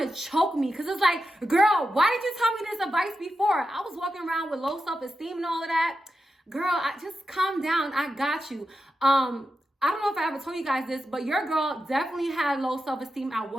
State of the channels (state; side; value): normal; both; correlation 0.89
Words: to choke me because it's like, girl, why did you tell me this advice before? I was walking around with low self-esteem and all of that. Girl, just calm down. I got you. I don't know if I ever told you guys this, but your girl definitely had low self-esteem at